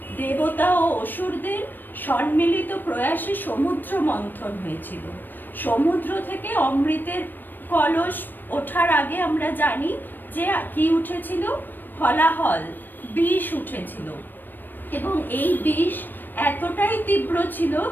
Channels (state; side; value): late; right; 0.092 ms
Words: দেবতা ও অসুরদের সম্মিলিত প্রয়াসে সমুদ্র মন্থন হয়েছিল। সমুদ্র থেকে অমৃতের কলস ওঠার আগে আমরা জানি যে কি উঠেছিল, হলাহল, বিষ উঠেছিল, এবং এই বিষ এতটাই তীব্র ছিল